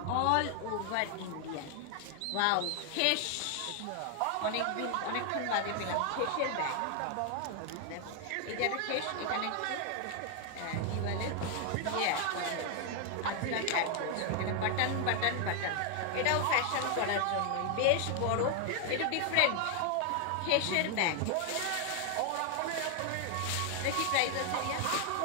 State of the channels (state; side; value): different; both; correlation 0.00